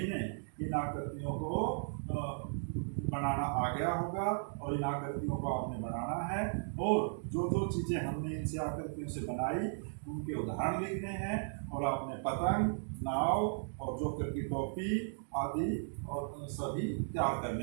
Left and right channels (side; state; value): left; silent; digital silence